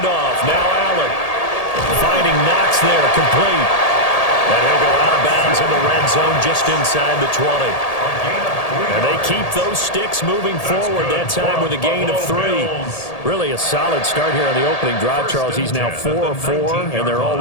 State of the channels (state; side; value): late; right; 1.8 ms